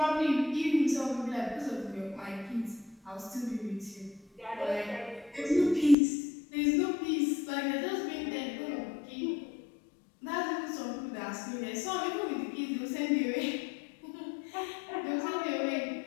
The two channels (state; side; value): drops out; right; at 6.0 s